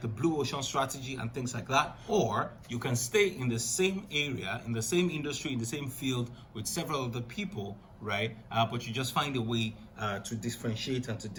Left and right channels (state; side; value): identical; both; correlation 1.00